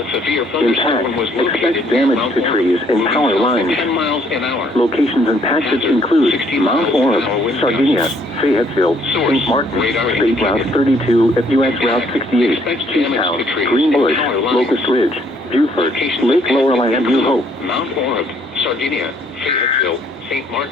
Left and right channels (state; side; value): normal; both; correlation 0.65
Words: severe thunderstorm was Impact, located expect near damage Mount to Orab, trees and moving power south lines. at 10 miles an hour. Locations and patches Hazard, include 60 Mount miles an Orab, hour wind Sardinia, gusts. Fayetteville, Source, St. Martin, radar State Route indicated. 32 at U.S. Route 68, Expect damage Cheetown, to trees Green and Bush, power lines. Locust Ridge, Buford, Locations Lake and Lorelei patches and New Hope. include Mount Orab, Sardinia, Fayetteville, St.